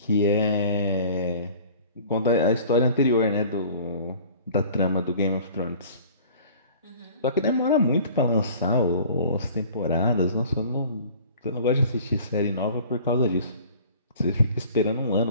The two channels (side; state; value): both; inverted; correlation -0.47